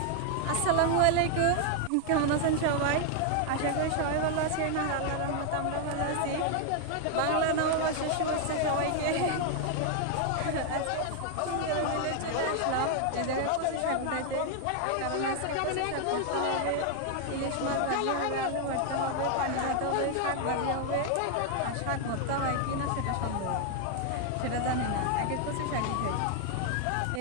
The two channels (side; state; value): both; different; correlation 0.00